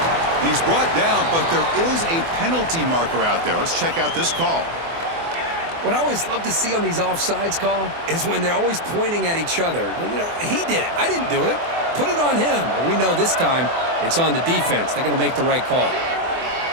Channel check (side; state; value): left; late; 24 ms